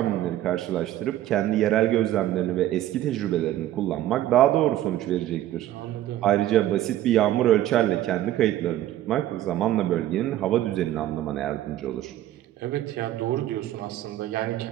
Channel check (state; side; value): quieter; left; 13.5 dB